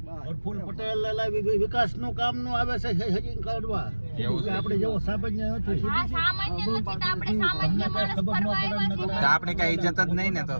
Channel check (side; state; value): both; inverted; correlation -1.00